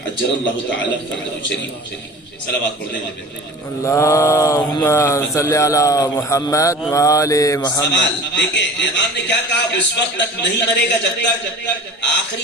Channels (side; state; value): both; normal; correlation 0.38